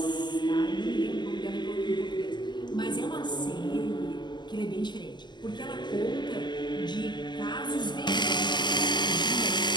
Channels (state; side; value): late; right; 0.21 ms